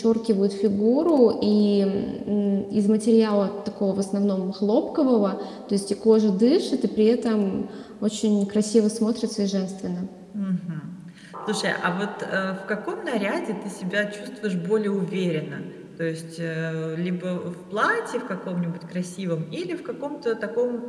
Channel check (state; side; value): identical; both; correlation 1.00